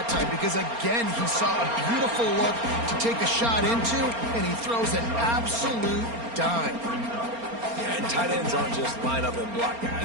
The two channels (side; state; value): left; late; 4.3 ms